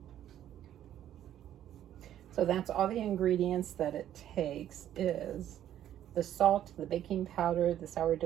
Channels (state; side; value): quieter; left; 11.4 dB